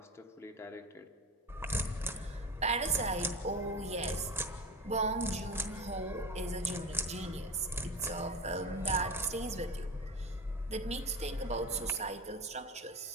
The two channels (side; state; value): both; normal; correlation 0.28